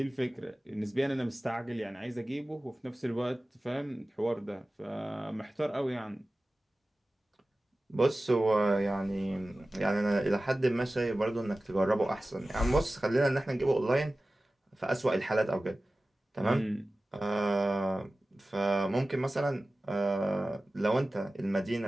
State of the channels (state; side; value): normal; both; correlation 0.96